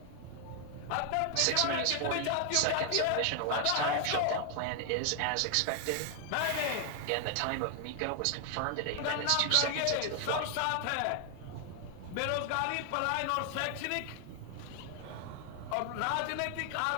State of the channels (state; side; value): different; both; correlation 0.00